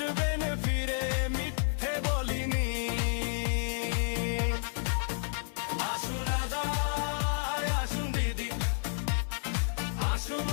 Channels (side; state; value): right; silent; 57 dB below the other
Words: ফিরে, মিথ্যে বলিনি। আসুন দাদা, আসুন দিদি,